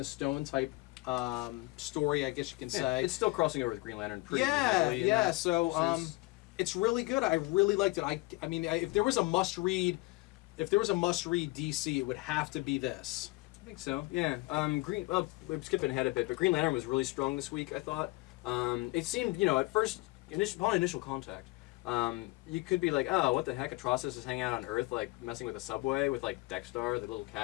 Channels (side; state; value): right; quieter; 23.0 dB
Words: the Stone type. Story, I guess you can say. It's still crossing over with Green Lantern pretty heavily. Yeah, so it's really good. I really liked it. I mean, if there was a must-read DC, it would have to be this. I think so. Yeah. Well, we're skipping ahead a bit, but Green Lantern was really strong this week, I thought. It seemed, you know, at first, upon initial contact, you could be like, oh, what the heck? Atrocitus is hanging out on Earth, like messing with a subway with like Dexter, the little